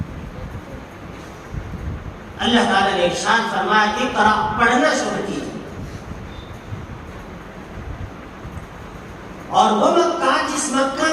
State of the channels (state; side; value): identical; both; correlation 1.00